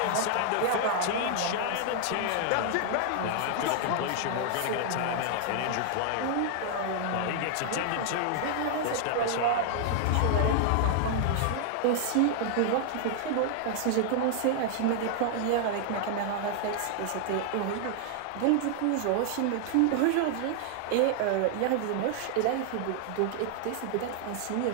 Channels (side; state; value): both; different; correlation 0.00